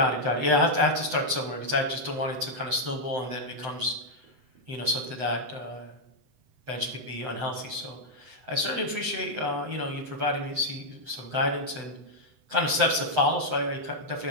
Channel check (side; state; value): left; late; 7.9 ms